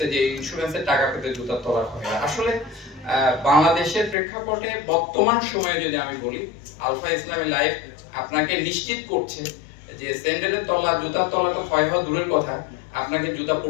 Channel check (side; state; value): right; drops out; at 4.2 s